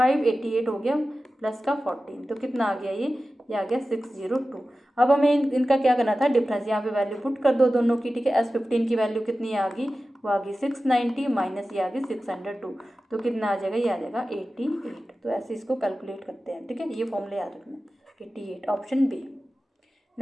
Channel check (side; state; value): both; normal; correlation 0.94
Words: हो गया प्लस का 14, तो कितना आ गया, ये आ गया 602। अब हमें इनका क्या करना था, डिफरेंस, यहाँ पे वैल्यू पुट कर दो दोनों की, ठीक है। S15 की वैल्यू कितनी आ गई, वो आ गई 690 माइनस ये आ गई 602, तो कितना आ जाएगा, ये आ जाएगा 88, तो ऐसे इसको कैलकुलेट करते हैं, ठीक है। ये फॉर्मूला याद रखना 88, ऑप्शन बी।